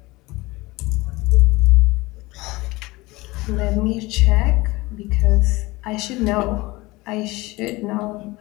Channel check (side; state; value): right; quieter; 21.5 dB